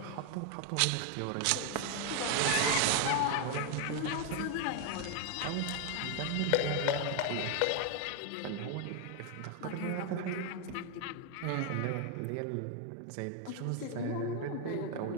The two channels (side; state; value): both; different; correlation 0.01